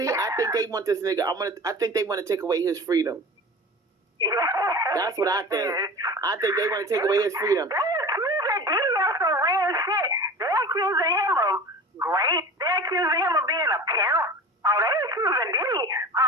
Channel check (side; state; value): both; normal; correlation 0.36